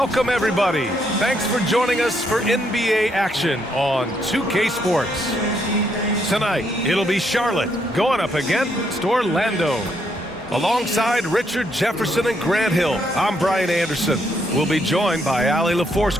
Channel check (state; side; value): normal; both; correlation 0.74